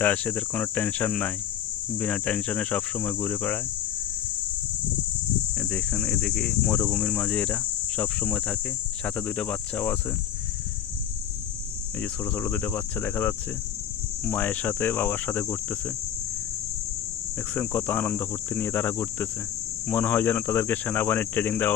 এদের কোনো টেনশন নাই, বিনা টেনশনে সবসময় ঘুরে বেড়ায়। দেখেন এদিকে মরুভূমির মাঝে এরা সবসময় থাকে, সাথে দুইটা বাচ্চাও আছে। এই যে ছোটো ছোটো দুইটা বাচ্চা দেখা যাচ্ছে, মায়ের সাথে বাবার সাথে ঘুরতেছে। দেখছেন কত আনন্দ ফুর্তি নিয়ে তারা ঘুরতেছে, মনে হয় যেন তাদেরকে সেনাবাহিনীর ট্রেনিং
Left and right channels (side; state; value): right; quieter; 9.7 dB